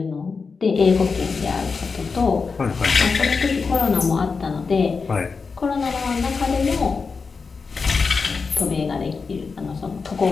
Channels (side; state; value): right; quieter; 4.9 dB